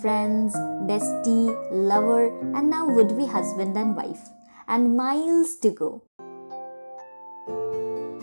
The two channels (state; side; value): inverted; both; correlation -1.00